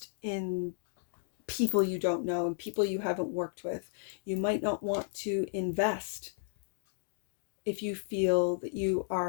in people you don't know and people you haven't worked with. You might not want to invest if you feel that you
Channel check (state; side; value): silent; right; digital silence